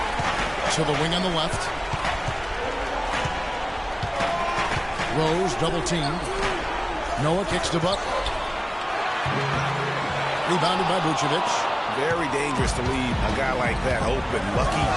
To the wing on the left. Rose double teamed. Noah kicks to Buck. Rebounded by Vucevic. Very dangerous to leave a guy like that open. Lucky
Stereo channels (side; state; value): both; identical; correlation 1.00